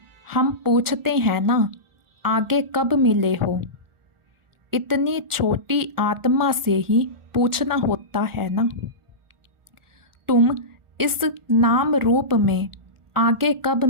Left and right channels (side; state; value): left; late; 1.4 ms